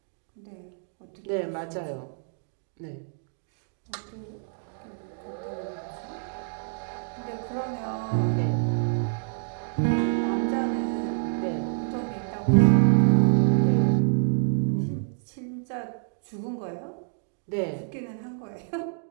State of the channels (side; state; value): left; silent; digital silence